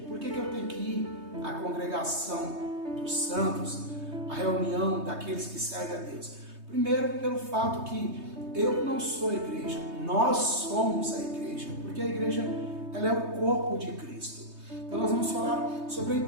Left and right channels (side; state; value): left; late; 3.2 ms